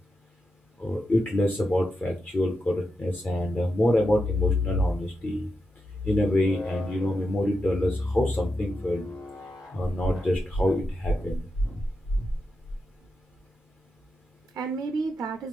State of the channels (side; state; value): both; normal; correlation 0.87